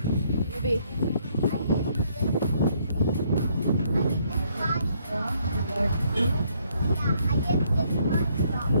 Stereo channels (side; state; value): both; inverted; correlation -0.69